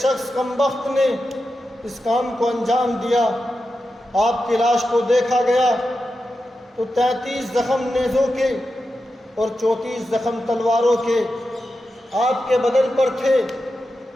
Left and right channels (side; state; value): both; normal; correlation 0.90